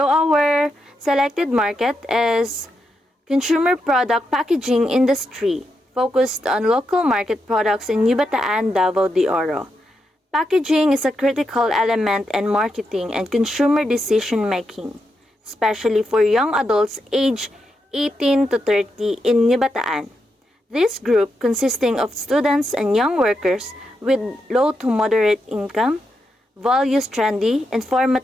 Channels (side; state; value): both; normal; correlation 0.84